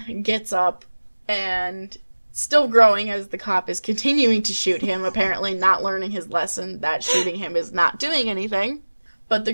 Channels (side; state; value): both; inverted; correlation -1.00